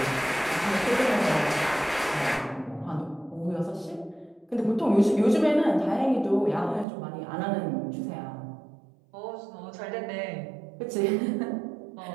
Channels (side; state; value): left; drops out; at 6.9 s